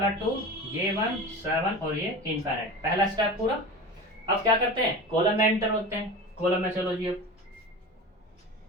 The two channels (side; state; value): both; normal; correlation 0.32